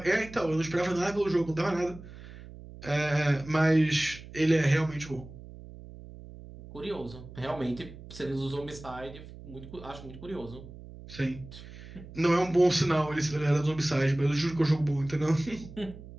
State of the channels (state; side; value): noise; right; hum, 16 dB below the sound